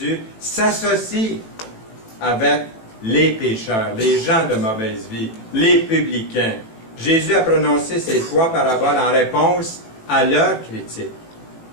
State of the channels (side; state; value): right; late; 18 ms